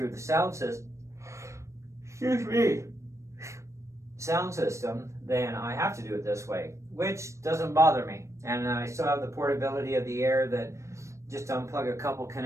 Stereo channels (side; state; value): left; late; 0.14 ms